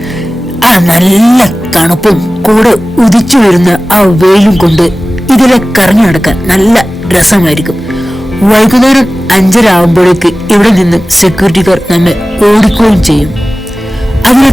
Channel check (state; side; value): normal; both; correlation 0.97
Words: ആ നല്ല തണുപ്പും കൂടെ ഉദിച്ചു വരുന്ന ആ വെയിലും കൊണ്ട് ഇതിലെ കറങ്ങി നടക്കാൻ നല്ല രസമായിരിക്കും. വൈകുന്നേരം 5:30 ആകുമ്പോഴേക്ക് ഇവിടെ നിന്ന് സെക്യൂരിറ്റിക്കാർ നമ്മെ ഓടിക്കുകയും ചെയ്യും. അതിനെ